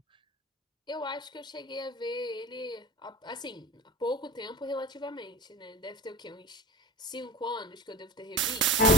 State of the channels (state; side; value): normal; both; correlation 0.32